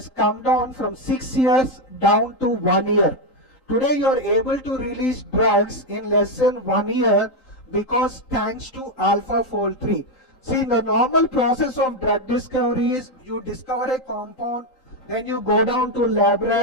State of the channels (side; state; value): right; late; 3.8 ms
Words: come down from 6 years down to 1 year. Today you are able to release drugs in less than 1 year because thanks to AlphaFold 3. See, the normal process of drug discovery is you discover a compound, then you go down to lab